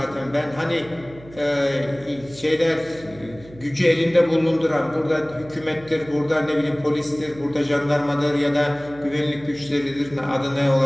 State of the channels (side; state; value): right; noise; hum, 20 dB below the sound